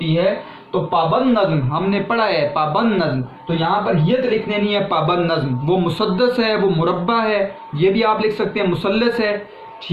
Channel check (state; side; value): identical; both; correlation 1.00